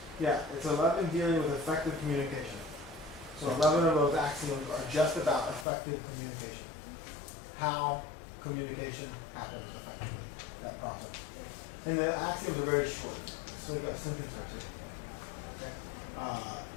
Yeah, it's 11 dealing with effective communication. So 11 of those axioms are just about effective communication. How communication happens effectively, that process. And the axioms are very short, so we've got a sentence or two. Okay.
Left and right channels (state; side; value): drops out; right; at 5.7 s